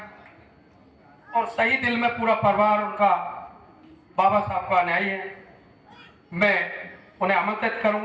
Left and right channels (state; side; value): identical; both; correlation 1.00